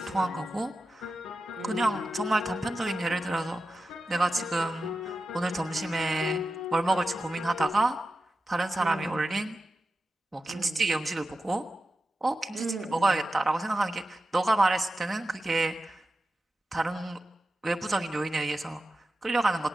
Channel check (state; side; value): normal; both; correlation 0.92